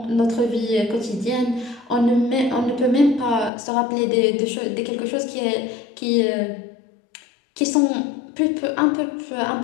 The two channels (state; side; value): drops out; right; at 3.5 s